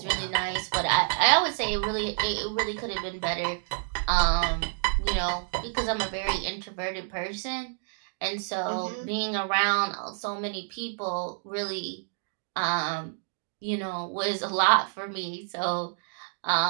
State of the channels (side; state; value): left; silent; digital silence